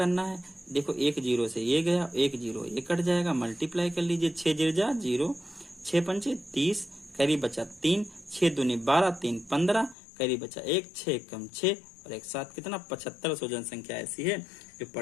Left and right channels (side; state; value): right; drops out; at 10.0 s